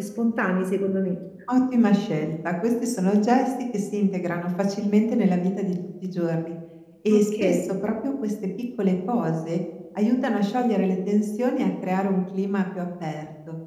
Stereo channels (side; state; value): both; identical; correlation 1.00